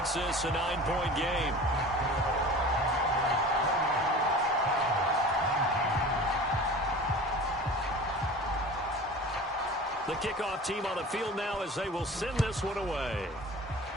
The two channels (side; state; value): both; normal; correlation 0.39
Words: this a 9-point game. The kickoff team on the field now as they will send this one away.